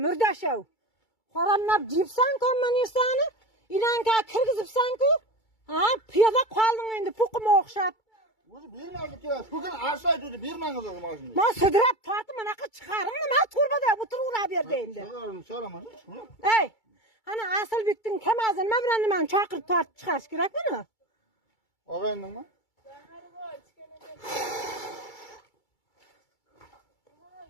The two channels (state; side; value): late; right; 2.3 ms